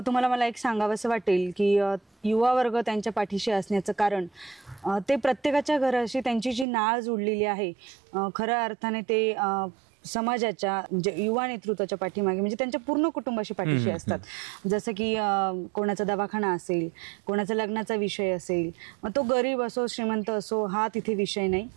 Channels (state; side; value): drops out; left; at 6.7 s